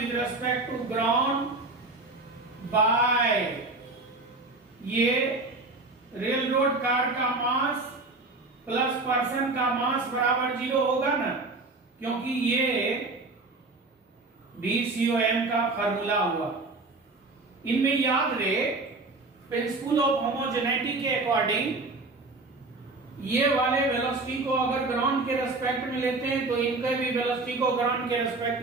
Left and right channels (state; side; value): quieter; left; 3.3 dB